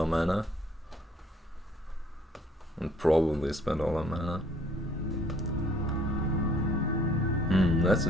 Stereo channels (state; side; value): normal; both; correlation 0.61